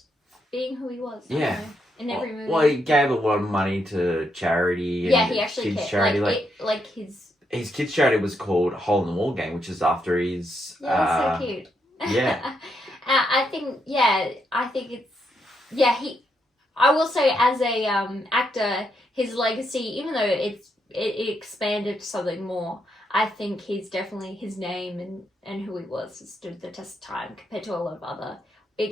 being who he was. Yeah. In every movie. Well, he gave a lot of money to charity. And he actually kids' cared. charity. His kids' charity was called Hole in the Wall Gang, which is after his. Yeah, that's so cute. Yeah. I think it's I will say, as a actor, his legacy, even though it expanded to something more, I think he's definitely, his name and who he was has stood the test of time compared to a lot of other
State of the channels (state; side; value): normal; both; correlation 0.79